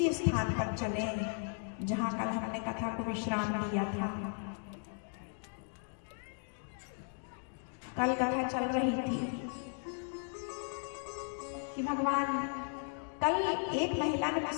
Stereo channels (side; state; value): right; silent; 54 dB below the other